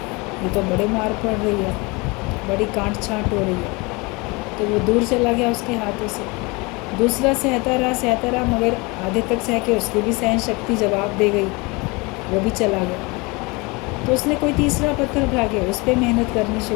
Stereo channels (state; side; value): quieter; right; 26.4 dB